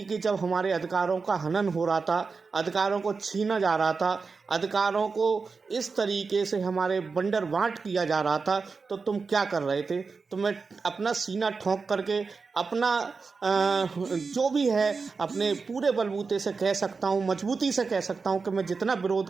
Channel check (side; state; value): left; quieter; 4.7 dB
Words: कि जब हमारे अधिकारों का हनन हो रहा था, अधिकारों को छीना जा रहा था, अधिकारों को इस तरीके से हमारे बंदरबांट किया जा रहा था, तो तुम क्या कर रहे थे। तो मैं अपना सीना ठोंक करके अपना जो भी है अपने पूरे बलबूते से कह सकता हूँ, मजबूती से कह सकता हूँ कि मैं जितना विरोध